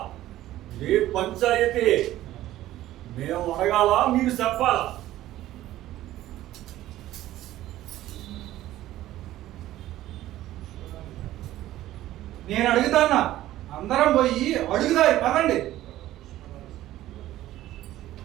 ఏ పంచాయతీ మేము అడగాల మీరు చెప్పాలా? నేను అడుగుతానా, అందరం పోయి అడుగుదారి పదండి.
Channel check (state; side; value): quieter; left; 14.5 dB